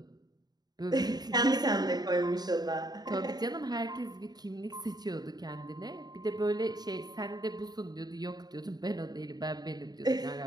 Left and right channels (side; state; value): left; late; 0.19 ms